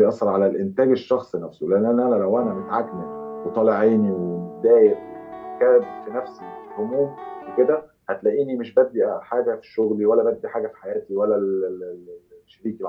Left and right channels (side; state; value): both; identical; correlation 1.00